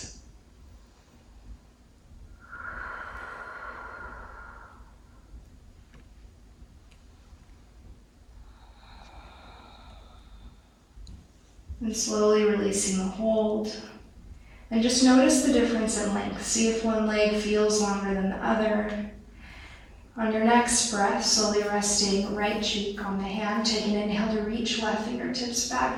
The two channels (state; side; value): identical; both; correlation 1.00